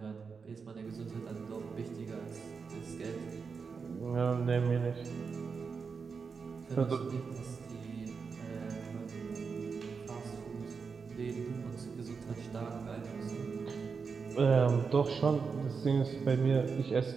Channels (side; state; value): left; quieter; 5.4 dB